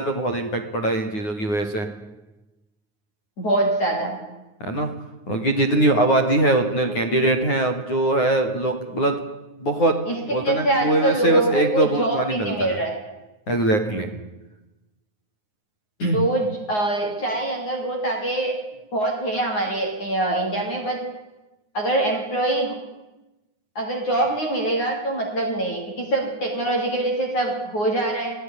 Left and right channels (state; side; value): late; right; 9.5 ms